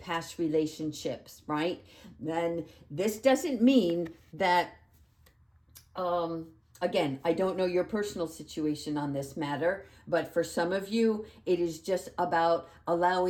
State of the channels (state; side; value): identical; both; correlation 1.00